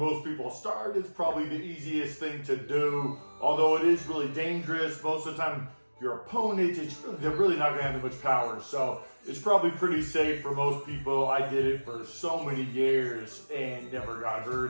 people start. It's probably the easiest thing to do, although it is really dangerous. Most of the time, your opponent, they're really not going to have that much power. So it's probably pretty safe for most people. I did it for so many years and never got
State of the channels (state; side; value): inverted; both; correlation -1.00